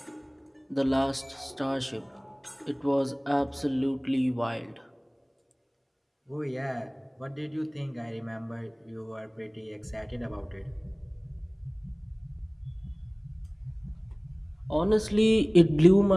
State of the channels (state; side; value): identical; both; correlation 1.00